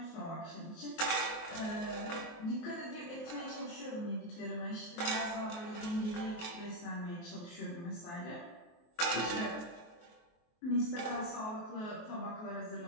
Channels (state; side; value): late; right; 23 ms